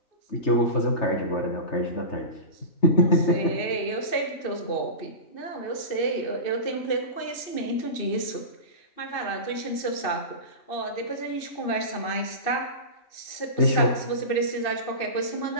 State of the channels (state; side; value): late; right; 2.6 ms